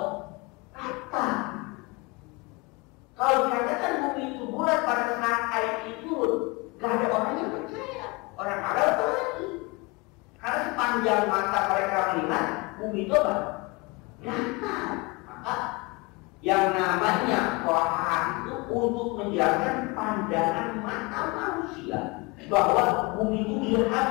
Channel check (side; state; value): right; quieter; 26.2 dB